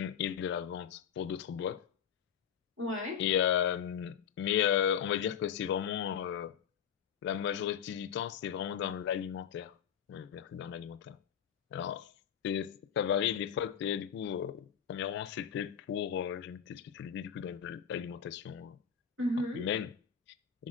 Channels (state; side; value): quieter; right; 8.2 dB